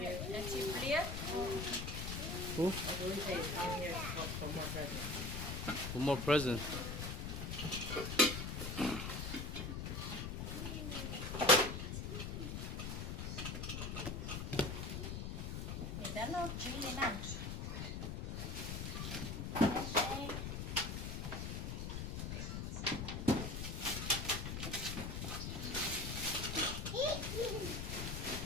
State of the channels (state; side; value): noise; left; rumble, 3 dB below the sound